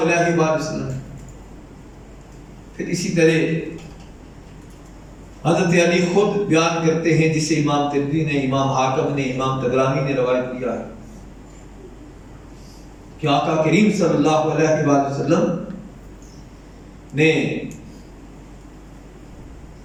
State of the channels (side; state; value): both; identical; correlation 1.00